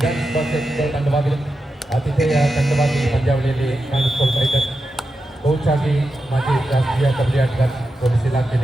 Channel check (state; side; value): normal; both; correlation 0.90